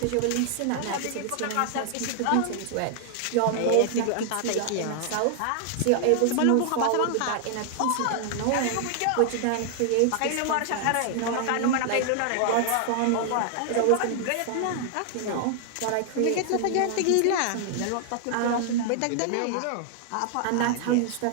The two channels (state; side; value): different; both; correlation 0.00